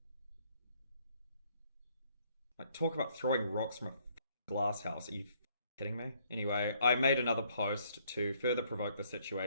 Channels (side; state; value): both; inverted; correlation -0.66